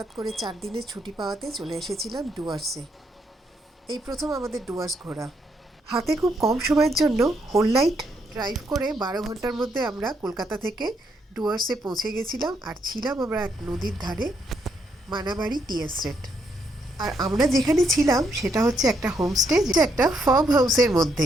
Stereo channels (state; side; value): normal; both; correlation 0.76